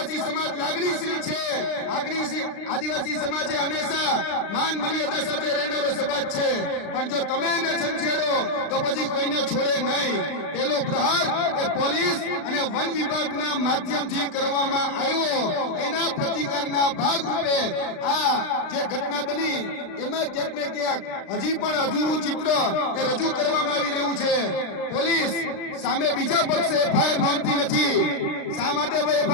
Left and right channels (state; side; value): late; right; 36 ms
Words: સમાજ લાગણીશીલ છે. આદિવાસી સમાજે હંમેશા માન મર્યાદા સાથે રહેનારો સમાજ છે. પણ જો તમે એને છંછેડો તો પછી કોઈને છોડે નહીં. પેલો પ્રહાર એ પોલીસ અને વન વિભાગના માધ્યમથી કરવામાં આવ્યો. એના પ્રતિકારના ભાગરૂપે આ જે ઘટના બની એમાં ક્યાંક ને ક્યાંક હજી પણ અધૂરું ચિત્ર એ રજૂ કરવામાં આવી રહ્યું છે. પોલીસ સામે બીજા પક્ષે એફઆઈઆર નોંધતી નથી. શા માટે